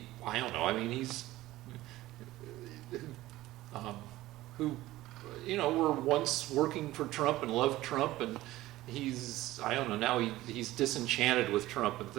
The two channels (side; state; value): left; quieter; 16.6 dB